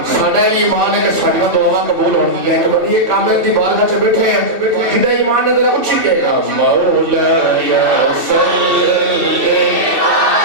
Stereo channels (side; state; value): left; late; 2.6 ms